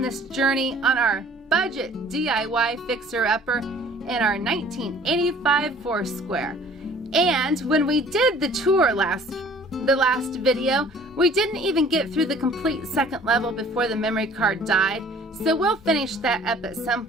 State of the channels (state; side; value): normal; both; correlation 0.52